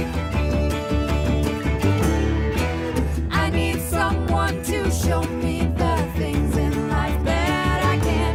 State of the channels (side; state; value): both; identical; correlation 1.00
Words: I need someone to show me the things in life that I